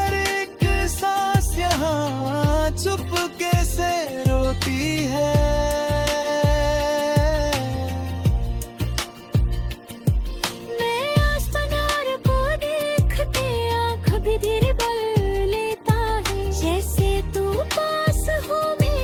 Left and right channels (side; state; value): both; identical; correlation 1.00